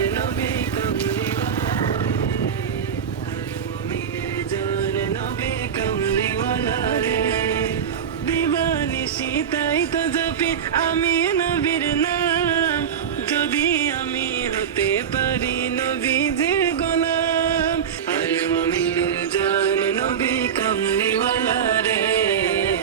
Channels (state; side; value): quieter; left; 7.9 dB